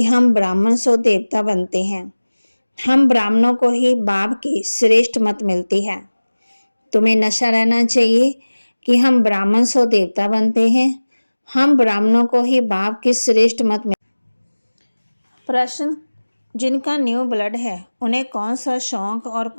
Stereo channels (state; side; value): inverted; both; correlation -1.00